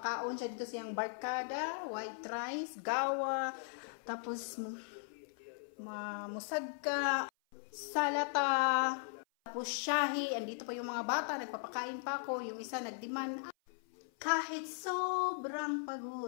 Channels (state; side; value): silent; right; 52 dB below the other